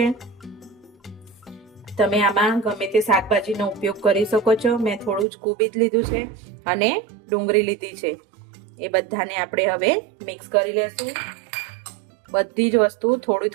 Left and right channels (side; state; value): left; drops out; at 5.2 s